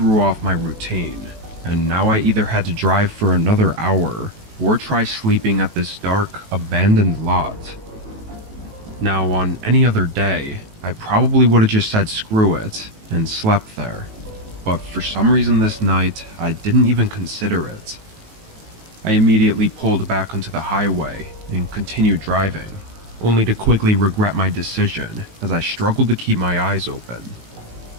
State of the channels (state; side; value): late; left; 18 ms